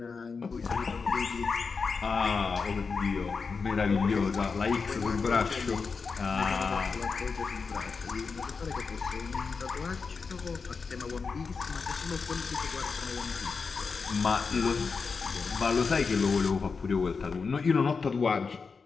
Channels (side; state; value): right; quieter; 5.0 dB